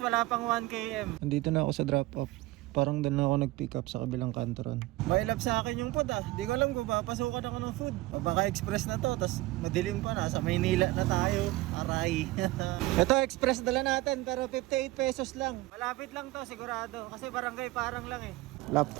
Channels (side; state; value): left; quieter; 18.8 dB